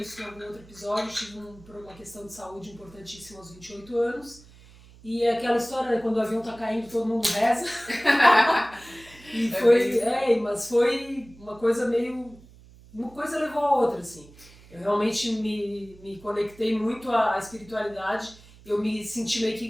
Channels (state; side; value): noise; right; hum, 23 dB below the sound